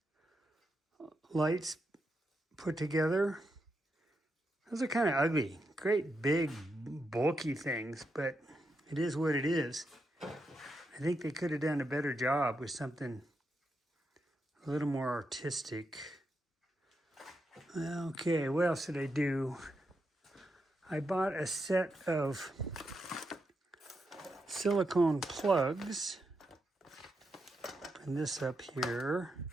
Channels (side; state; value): both; normal; correlation 0.84